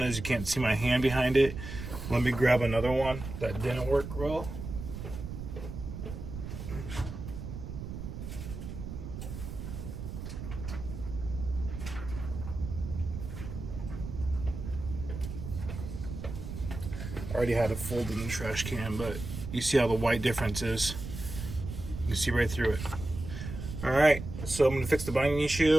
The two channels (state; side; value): noise; right; rumble, 8 dB below the sound